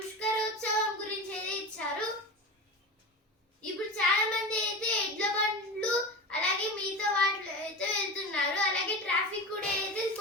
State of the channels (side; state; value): both; normal; correlation 0.28